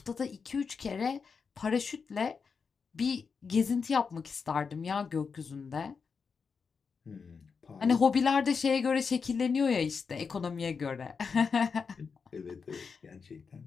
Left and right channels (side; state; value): right; quieter; 5.5 dB